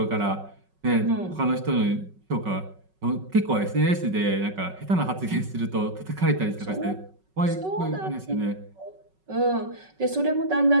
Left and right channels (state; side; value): late; left; 5.4 ms